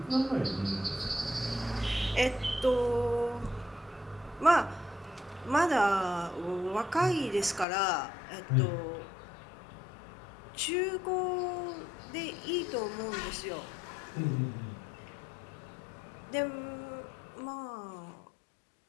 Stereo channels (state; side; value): drops out; right; at 7.7 s